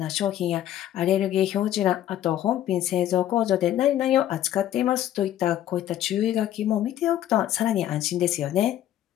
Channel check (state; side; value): quieter; right; 12.1 dB